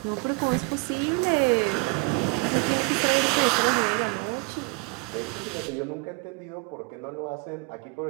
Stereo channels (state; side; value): quieter; left; 28.4 dB